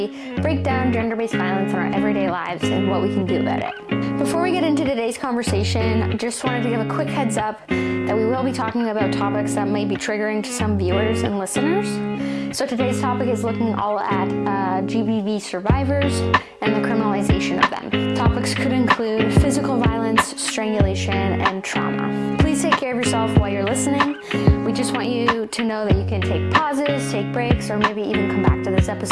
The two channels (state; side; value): identical; both; correlation 1.00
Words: break down gender-based violence in our everyday lives and what we can do about it. Before we get into today's conversation, I just wanted to give a quick heads up that we will be talking about topics that may be triggering to some viewers and listeners. So today's topic is looking all at GBV survivors and the criminalization of them. Topics could include physical violence, strangulation, and trauma. Please take care of yourself while you're listening. We just want you to know that you can take pauses, take breaks, or maybe even come back to this